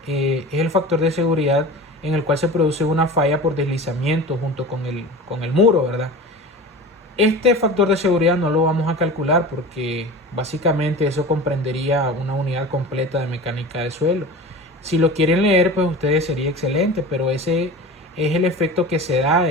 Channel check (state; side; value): normal; both; correlation 0.34